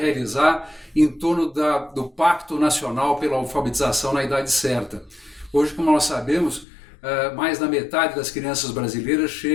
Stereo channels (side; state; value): right; drops out; at 6.7 s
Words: em torno do Pacto Nacional pela Alfabetização na idade certa. Hoje, como nós sabemos, mais da metade das crianças brasileiras